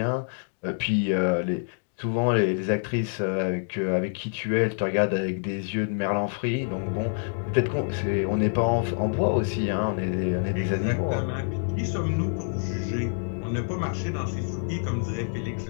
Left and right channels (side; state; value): right; silent; 60 dB below the other